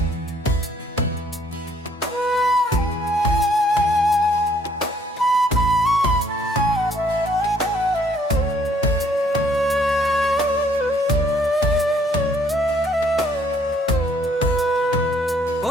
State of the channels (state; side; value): normal; both; correlation 0.64